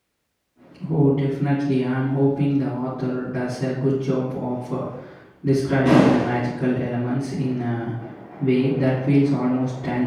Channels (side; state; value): both; identical; correlation 1.00